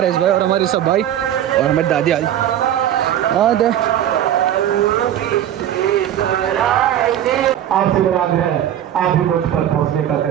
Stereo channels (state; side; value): quieter; left; 11.2 dB